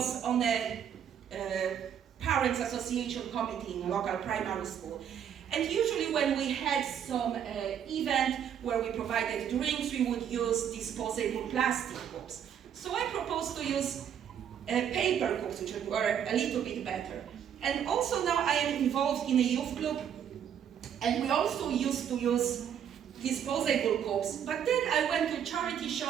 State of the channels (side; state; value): left; quieter; 8.9 dB